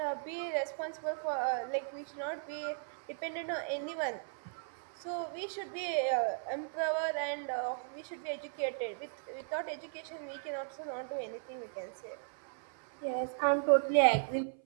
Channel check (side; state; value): left; silent; 53 dB below the other